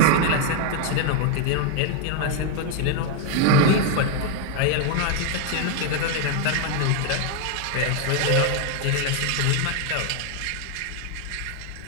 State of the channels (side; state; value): both; different; correlation 0.01